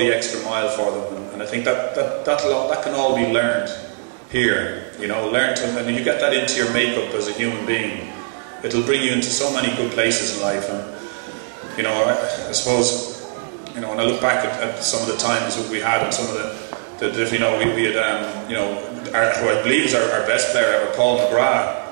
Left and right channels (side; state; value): left; silent; 64 dB below the other